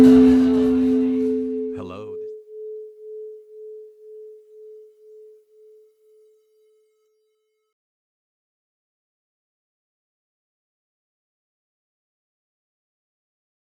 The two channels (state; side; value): identical; both; correlation 1.00